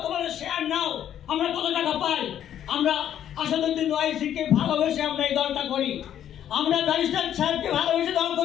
তোমাদের শেয়ার নাও। আমরা কত টাকা পাই? আমরা আসাদুদ্দিন ওয়াইসিকে ভালোবেসে আমরা এই দলটা করি, আমরা ব্যারিস্টার সাহেবকে ভালোবেসে দল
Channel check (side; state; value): right; quieter; 10.4 dB